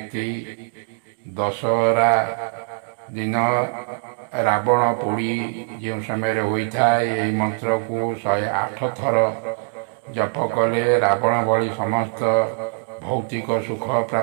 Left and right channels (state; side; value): silent; left; 56 dB below the other